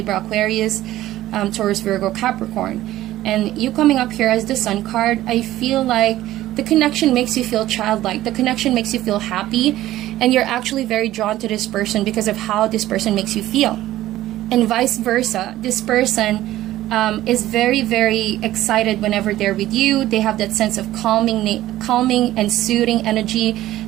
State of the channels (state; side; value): quieter; left; 14.7 dB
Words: Aquarius, Taurus, Virgo, Capricorn. And you coming up here as the Sun card, I feel like the connection makes you feel childlike. The connection makes you feel happy. And you're actually very drawn to this person because of how this person makes you feel. And vice versa. This person is very, very excited whenever they're with you. They have that sense of calming and soothing energy.